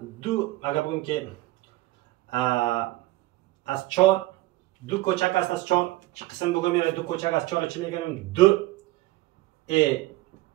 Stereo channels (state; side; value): quieter; left; 18.4 dB